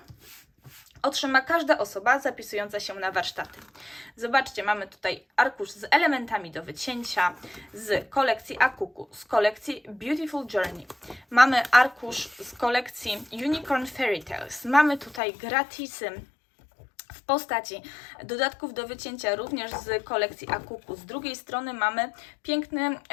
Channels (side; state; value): right; drops out; at 15.2 s